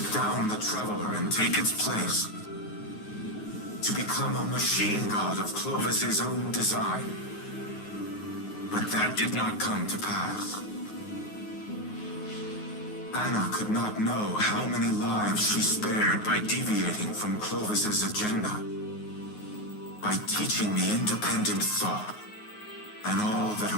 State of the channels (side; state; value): right; late; 9.5 ms